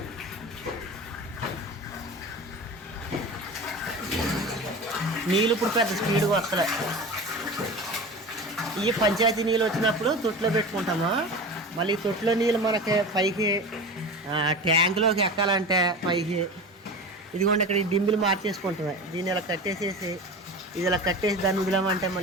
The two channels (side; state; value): both; normal; correlation 0.31